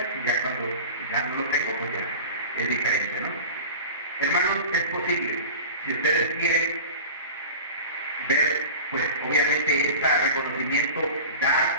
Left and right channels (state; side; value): inverted; both; correlation -0.36